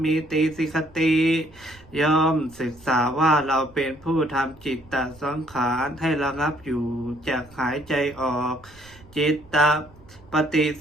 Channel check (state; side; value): noise; right; rumble, 25 dB below the sound